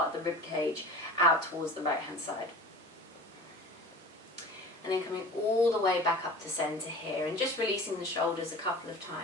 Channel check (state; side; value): normal; both; correlation 0.39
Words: of the rib cage out towards the right hand side. And then coming all the way back up to centre here and just releasing the shoulders a couple of